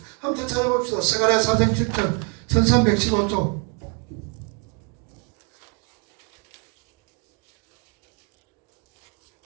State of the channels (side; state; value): left; quieter; 36.4 dB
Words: 한번 더 찾아봅시다. 스가랴 4장 7절 1315쪽.